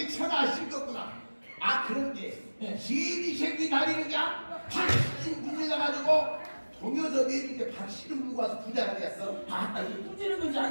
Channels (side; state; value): both; inverted; correlation -1.00